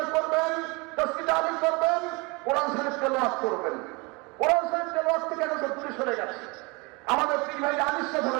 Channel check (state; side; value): quieter; left; 27.7 dB